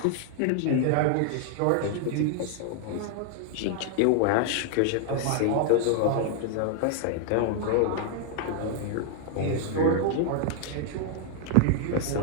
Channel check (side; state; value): both; different; correlation 0.00